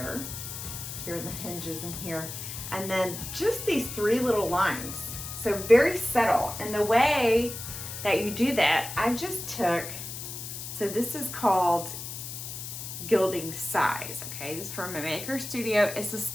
here in the hinges and here. And then just these 3 little lines. So very subtle. And the way that you do that, I just took, so this is called Gilding Size, okay? This is from a Maker Studio. It's a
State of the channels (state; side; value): noise; left; hiss, 8 dB below the sound